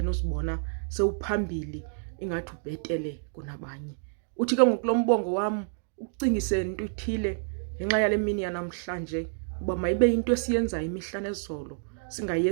uzibona sewuphambili ingathi ubhetele kunabanye. Uthi ke ngoku lo mbongo wam ukucingise into ithile ngenxa yale mini yanamhlanje, uba mayibe into esiyenzayo imihla nezolo,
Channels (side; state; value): left; silent; digital silence